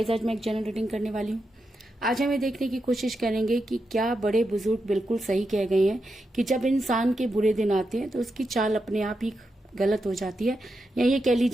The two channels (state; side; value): normal; both; correlation 0.86